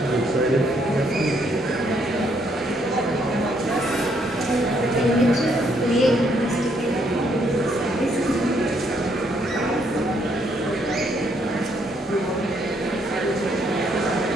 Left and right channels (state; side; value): normal; both; correlation 0.71